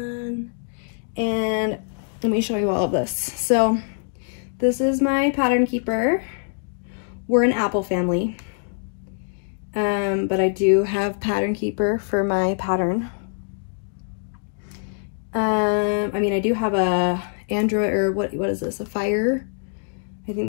And let me show you all of this. So this is my pattern keeper. We're an apple family. But I do have pattern keeper for my pattern. I mean, I do have a Android, or what is this? A Fire. I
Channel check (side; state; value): right; silent; digital silence